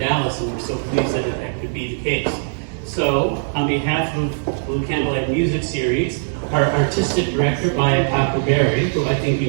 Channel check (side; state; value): left; silent; digital silence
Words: and we're so pleased that that could be the case. So, on behalf of Blue Candlelight Music Series, our artistic director, Maya Takuberry, who I think